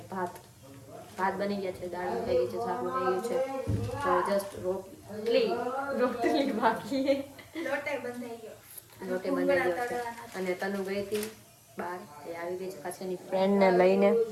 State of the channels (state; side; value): identical; both; correlation 1.00